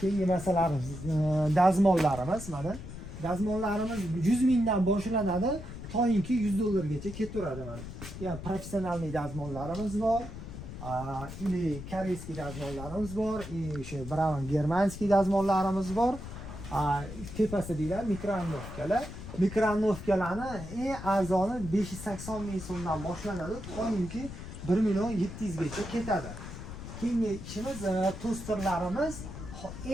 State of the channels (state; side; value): noise; left; rumble, 10 dB below the sound